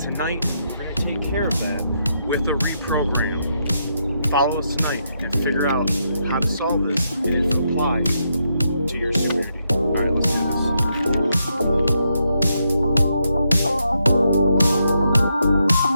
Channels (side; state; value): both; inverted; correlation -0.80